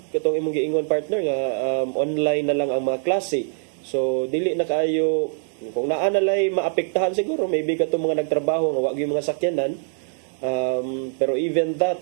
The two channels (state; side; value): silent; left; digital silence